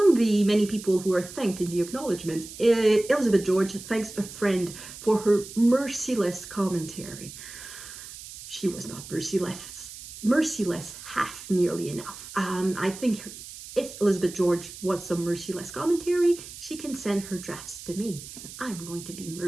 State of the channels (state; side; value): noise; right; hiss, 14 dB below the sound